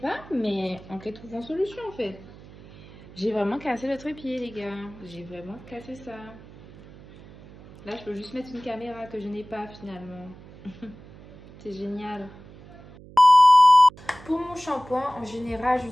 mais on peut trouver une solution en fait. J'ai vraiment cassé le trépied, les gars. J'ai vraiment cassé ça. Là, je peux juste mettre une caméra que je n'ai pas finalement. C'est génial. Pour mon shampoing, en général,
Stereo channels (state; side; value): noise; right; hum, 20 dB below the sound